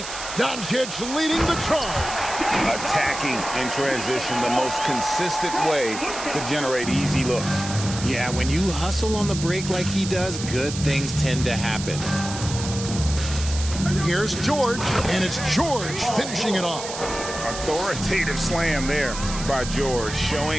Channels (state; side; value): noise; right; hiss, 9 dB below the sound